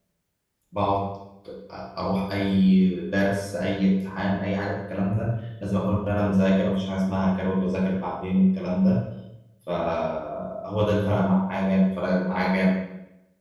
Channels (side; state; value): both; identical; correlation 1.00